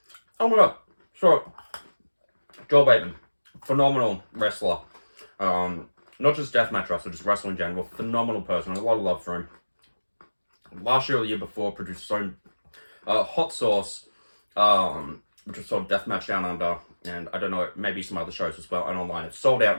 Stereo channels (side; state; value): both; inverted; correlation -1.00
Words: Oh my god. So, Joel Bateman, phenomenal wrestler. Not just deathmatch wrestler, just wrestling in general. Phenomenal person. A lot of love for him. Last year or the year before, produced his own Hot Sauce, which was sort of deathmatch down under, and I don't know, maybe some other shows as well, and online. It's sold out